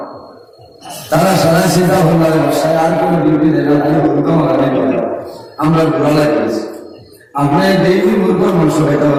তারা সারা চিন্তা করলাম বাসায় আর কোনো ডিউটি দেয় না আমরা বুড়া লাগতেছি আপনার ডেইলি মুরগোর মাংস খেতে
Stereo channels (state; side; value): identical; both; correlation 1.00